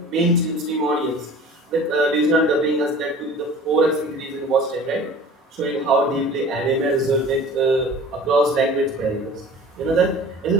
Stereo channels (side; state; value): both; normal; correlation 0.42